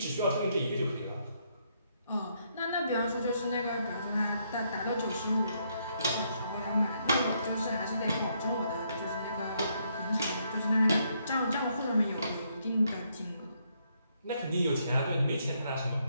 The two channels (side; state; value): both; inverted; correlation -0.74